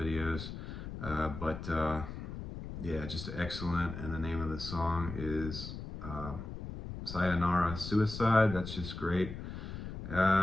Yeah, just excellent. And the name of the song is Sayonara Suicide. That's just great.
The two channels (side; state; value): left; noise; rumble, 8 dB below the sound